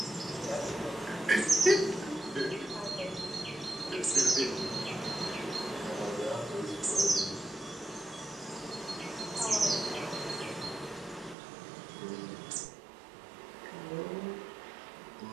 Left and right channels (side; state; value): left; drops out; at 11.4 s